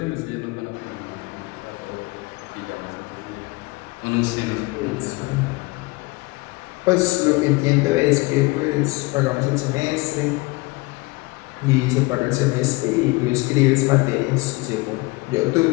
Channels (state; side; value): quieter; right; 24.4 dB